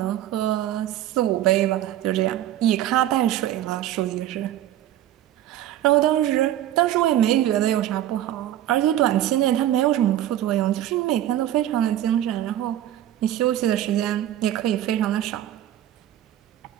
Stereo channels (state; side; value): quieter; left; 12.4 dB